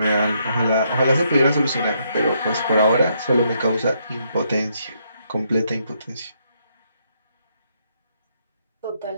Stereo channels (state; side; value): inverted; both; correlation -0.75